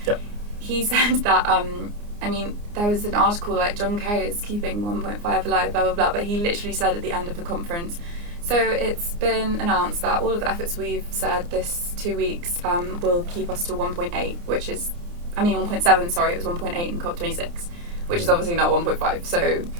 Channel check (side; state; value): left; late; 29 ms